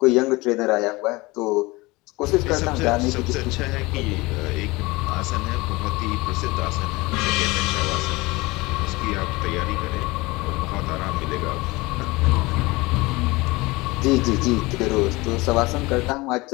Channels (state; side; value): quieter; right; 22.4 dB